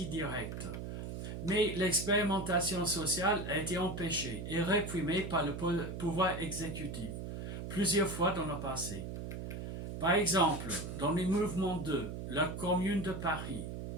directe. Mais l'expérimentation sociale a été empêchée et réprimée par le pouvoir exécutif, plusieurs fois dans le passé. Par exemple, dans les mouvements de la Commune de Paris,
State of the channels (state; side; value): noise; right; hum, 6 dB below the sound